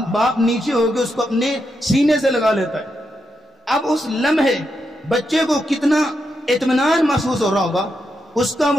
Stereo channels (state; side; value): normal; both; correlation 0.84